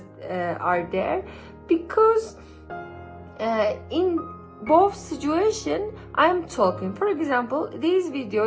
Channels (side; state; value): both; identical; correlation 1.00